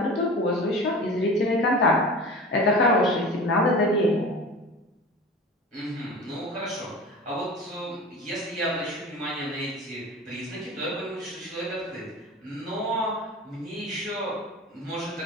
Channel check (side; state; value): both; normal; correlation 0.35